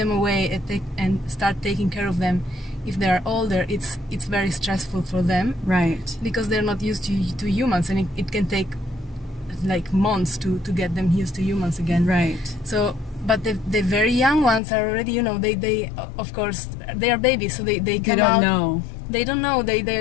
away and start taking care of them, if they are older, it's very stressful for them. Right. Because they're not used to humans, and it can take like months to get them used to humans again. Right. So, but the very young ones are already, they of course, they are babies, so they come out. They don't know.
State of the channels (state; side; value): drops out; right; at 14.6 s